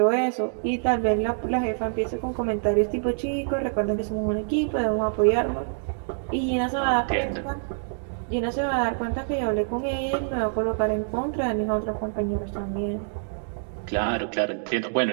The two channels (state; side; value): silent; left; digital silence